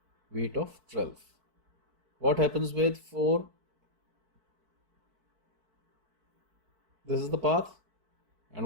weight of 12. What happens with 4? This is the path. And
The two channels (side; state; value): left; late; 4.6 ms